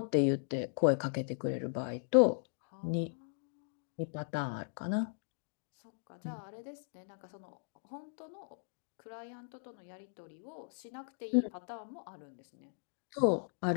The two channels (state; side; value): silent; right; digital silence